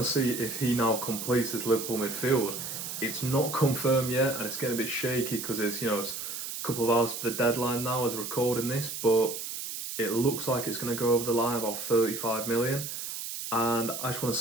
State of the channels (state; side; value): noise; right; hiss, 6 dB below the sound